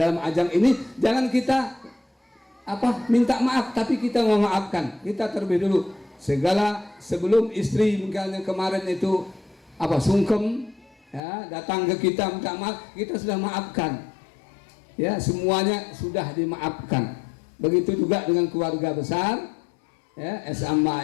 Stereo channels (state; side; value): drops out; right; at 11.2 s